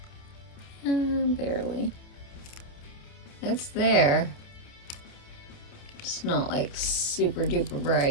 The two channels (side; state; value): right; late; 28 ms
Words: Barely. It's there. It's not like super duper